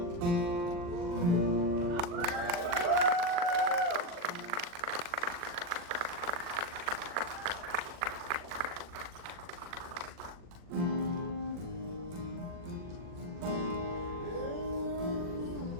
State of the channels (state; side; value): late; left; 40 ms